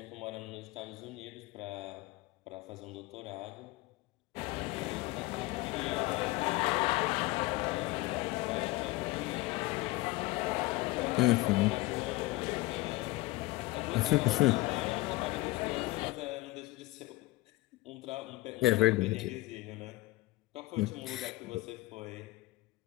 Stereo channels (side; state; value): right; quieter; 20.1 dB